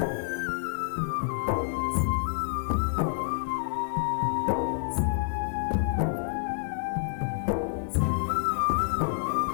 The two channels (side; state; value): right; silent; 59 dB below the other